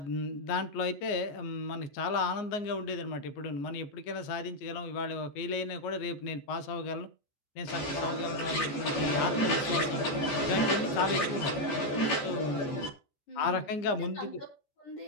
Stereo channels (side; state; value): right; late; 14 ms